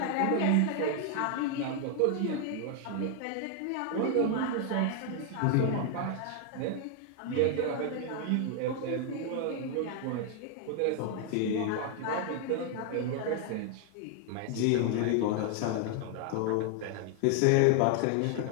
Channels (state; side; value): different; both; correlation 0.00